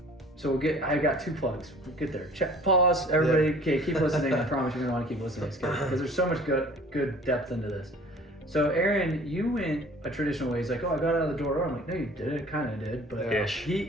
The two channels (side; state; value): both; normal; correlation 0.49